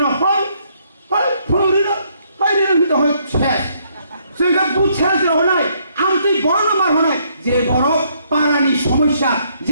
हय फुलुरिनो हयनो दहय छे जों गा बुछा जरनाय आमति बड़ मार हनाय जे बड़ पारानि समस्या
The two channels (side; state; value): both; inverted; correlation -0.70